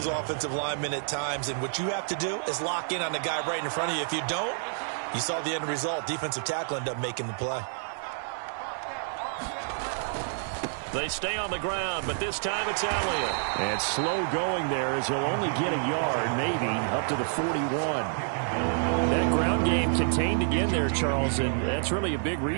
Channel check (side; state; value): left; silent; 59 dB below the other